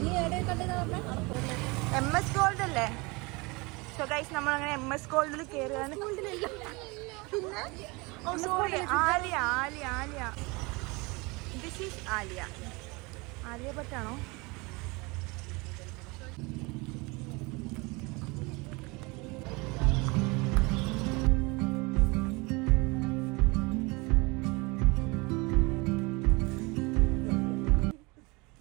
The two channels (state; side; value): quieter; left; 26.2 dB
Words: MS ഗോൾഡ് അല്ലേ? സോ ഗൈസ്, നമ്മളങ്ങനെ MS ഗോൾഡിൽ കയറുകയാണ്. പിന്നെ sorry, Alia. This is Alia ഭട്ടാണോ?